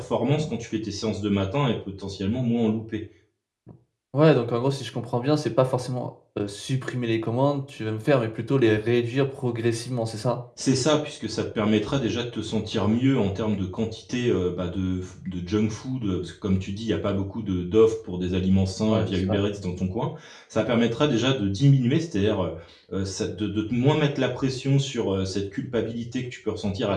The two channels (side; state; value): both; identical; correlation 1.00